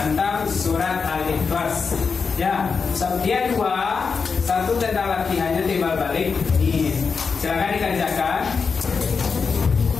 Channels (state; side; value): quieter; right; 5.3 dB